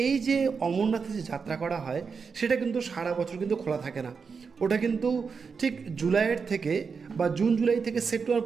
এই যে অমরনাথে যে যাত্রা করা হয় সেটা কিন্তু সারা বছর কিন্তু খোলা থাকে না, ওটা কিন্তু ঠিক জুলাইয়ের থেকে বা জুন জুলাই থেকে সেপ্টেম্বর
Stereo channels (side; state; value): left; quieter; 5.5 dB